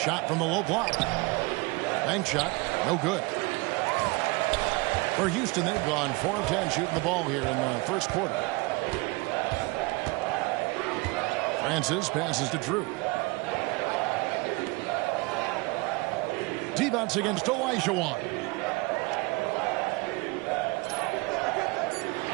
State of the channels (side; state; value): left; quieter; 25.8 dB